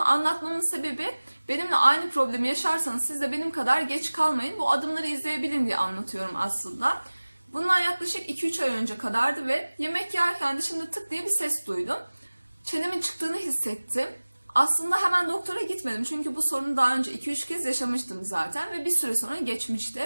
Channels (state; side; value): inverted; both; correlation -1.00